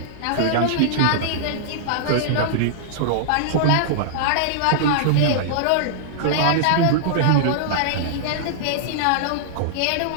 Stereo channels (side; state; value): both; different; correlation -0.02